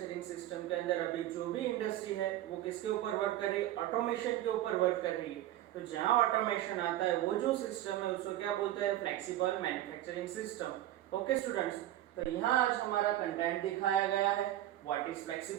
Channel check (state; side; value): quieter; left; 13.8 dB